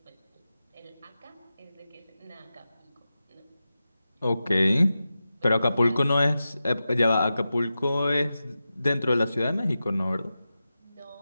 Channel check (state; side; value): inverted; both; correlation -0.93